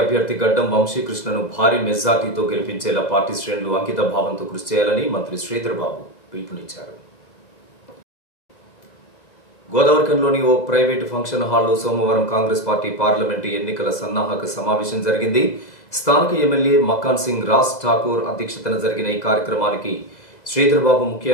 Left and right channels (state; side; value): late; right; 2.0 ms